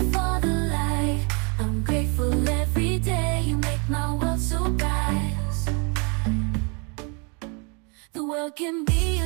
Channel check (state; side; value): quieter; left; 34.0 dB